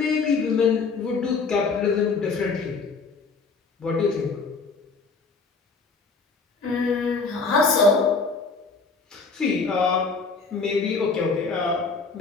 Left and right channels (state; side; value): quieter; right; 4.5 dB